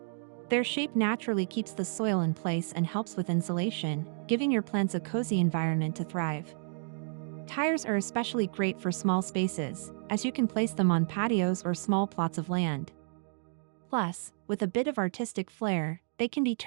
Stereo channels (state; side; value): silent; left; digital silence